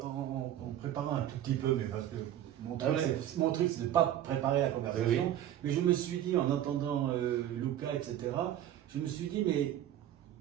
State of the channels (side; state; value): left; quieter; 11.7 dB